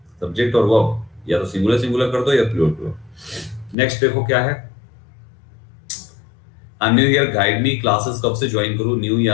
सब्जेक्ट और वर्ब या तो सिंगुलर सिंगुलर कर दो या प्लूरल प्लूरल। नेक्स्ट देखो क्या है, new year guide me, classes कब से ज्वाइन करूं, न्यू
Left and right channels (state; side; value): drops out; right; at 3.8 s